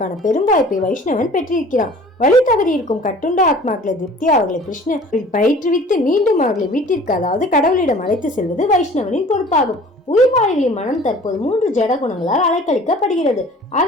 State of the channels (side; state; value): both; normal; correlation 0.48